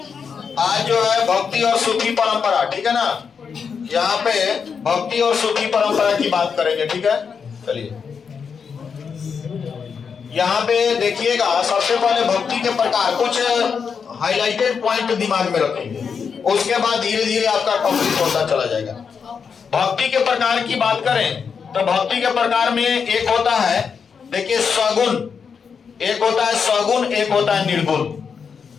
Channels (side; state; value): right; quieter; 6.2 dB